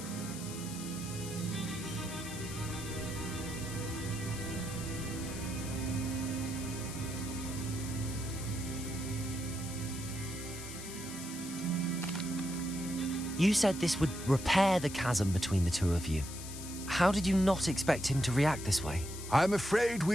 You said this would repair the chasm between the two of you. How did you not expect him to react this way? I'm afraid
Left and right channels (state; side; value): noise; left; hiss, 11 dB below the sound